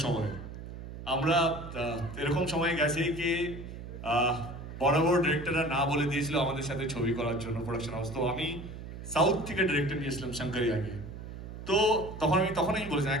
সময়। আমরা এরকম সময় গেছে কি বড় বড় ডিরেক্টররা না বলে দিয়েছিল আমাদের সাথে ছবি করার জন্য প্রোডাকশন হাউস। তো আমি সাউথ থেকে ডিরেক্টর নিয়েছিলাম শঙ্করি আগে। তো তখনই বলেছিলাম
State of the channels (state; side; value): noise; right; hum, 11 dB below the sound